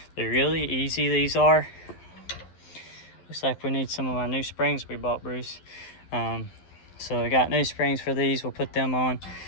They're really easy, these are. Looks like we need some of my new springs we bought, Bruce. So I got new springs for these. We'll put them on.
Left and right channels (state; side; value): late; right; 12 ms